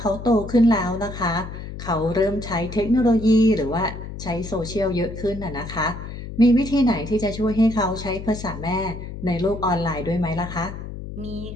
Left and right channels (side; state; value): left; noise; hum, 10 dB below the sound